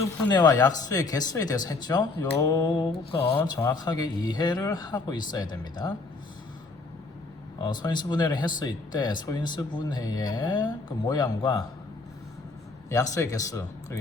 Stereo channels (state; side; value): quieter; right; 3.7 dB